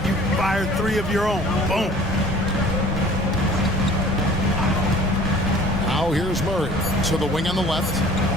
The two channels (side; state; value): both; normal; correlation 0.49